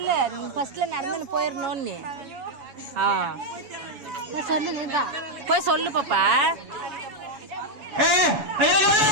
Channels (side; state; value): left; late; 7.2 ms